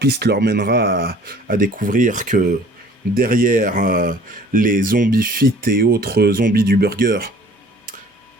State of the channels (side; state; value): both; normal; correlation 0.51